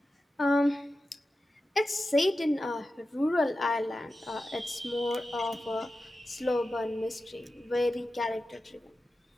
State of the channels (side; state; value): both; normal; correlation 0.93